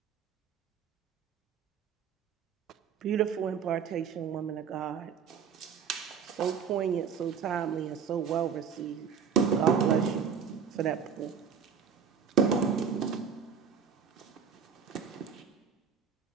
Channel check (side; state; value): left; quieter; 6.9 dB